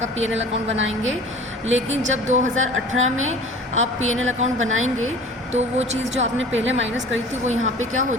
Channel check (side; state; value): both; normal; correlation 0.43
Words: पीएनएल अकाउंट बनाएंगे, लेकिन जब 2018 में आप पीएनएल अकाउंट बनाएंगे तो वो चीज़ जो आपने पहले माइनस करी थी वो यहाँ पे क्या हो